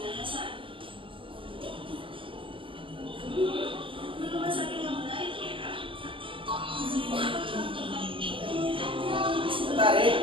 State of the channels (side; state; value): left; late; 0.25 ms